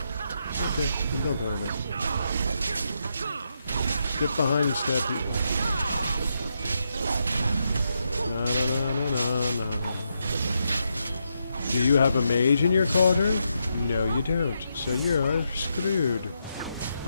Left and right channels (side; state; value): both; inverted; correlation -0.82